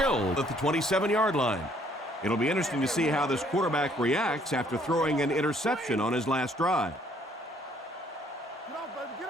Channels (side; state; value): both; normal; correlation 0.64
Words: at the 27-yard line. It'll be interesting to see how this quarterback reacts after throwing an interception on his last drive.